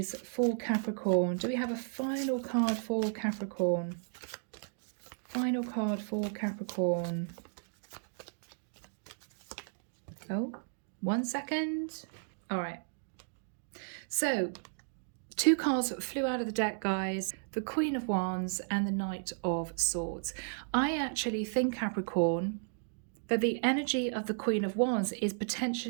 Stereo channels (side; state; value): left; silent; digital silence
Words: for Capricorn? Do we have a final card for Capricorn? Final card for Capricorn. Oh, 1 second. All right. So 2 cards flew out of the deck, guys. The Queen of Wands and the Knight of Swords. I actually think, Capricorn, that the energy of the Queen of Wands is